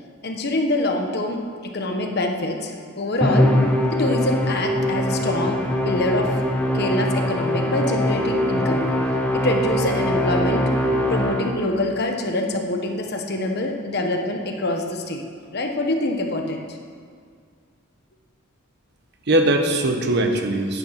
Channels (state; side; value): normal; both; correlation 0.42